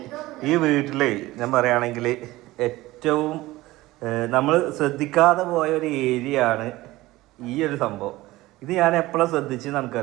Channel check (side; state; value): left; quieter; 18.3 dB